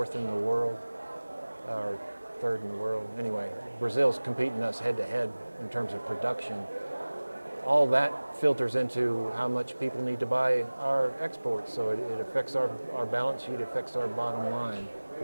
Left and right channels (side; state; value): both; inverted; correlation -1.00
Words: in the world, or third in the world. Anyway, Brazil's competing us head to head in terms of production. All that filters into how much people need to buy our exports. So it affects our balance sheet, affects our bottom line,